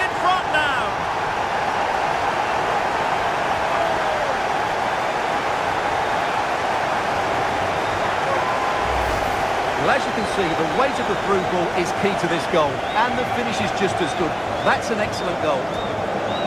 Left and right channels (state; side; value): identical; both; correlation 1.00